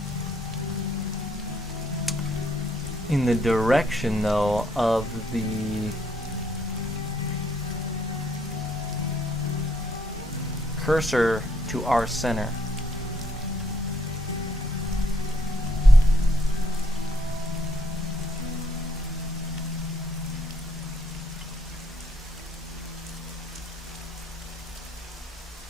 In the direction, though, of the cursor to our center.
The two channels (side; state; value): both; normal; correlation 0.71